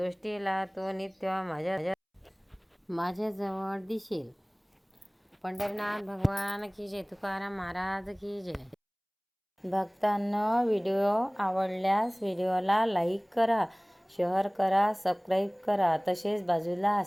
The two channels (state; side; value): identical; both; correlation 1.00